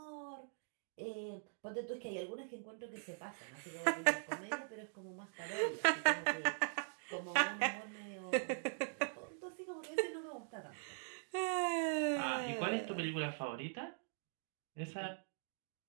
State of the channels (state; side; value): silent; left; digital silence